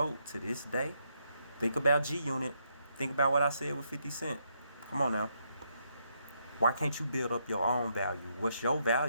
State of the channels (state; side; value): inverted; both; correlation -0.77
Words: to this day? Think about G-Unit. Think about what I said with 50 Cent. Come on now. Why can't you build up your own value? What's your